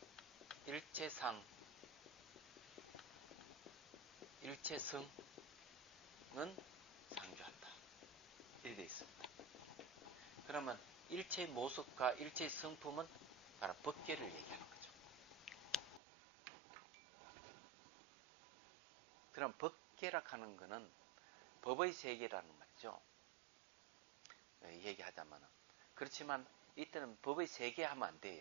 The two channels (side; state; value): left; drops out; at 16.0 s